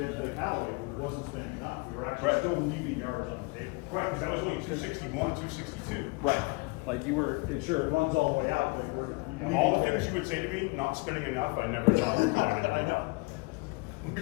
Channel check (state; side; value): quieter; right; 27.7 dB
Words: Callaway, we wasn't spending enough. We were actually Right. still leaving yards on the table. Right, because I was doing 261, 262. Right. Like you were, sure, it runs all the way out, but Of all the things you would say to me, not spending enough, I never thought of driving I enough. know.